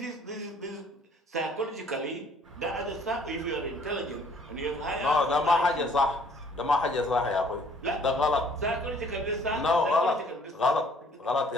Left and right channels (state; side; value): normal; both; correlation 0.58